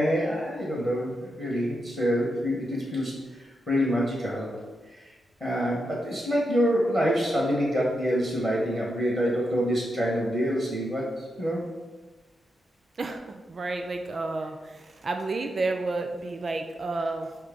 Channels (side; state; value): both; normal; correlation 0.85